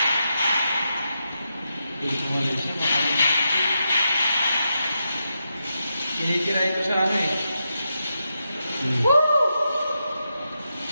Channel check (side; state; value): both; inverted; correlation -0.86